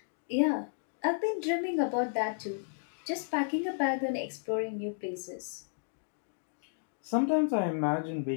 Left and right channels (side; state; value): right; silent; digital silence